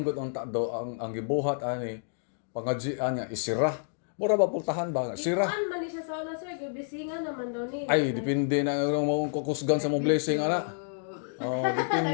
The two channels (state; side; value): silent; right; digital silence